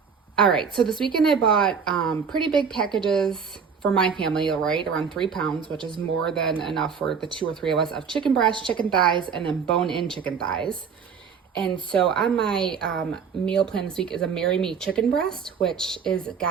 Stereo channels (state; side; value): quieter; left; 6.3 dB